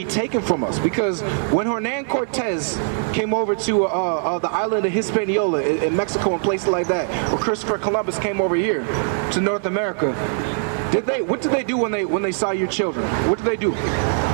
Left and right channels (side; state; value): left; silent; digital silence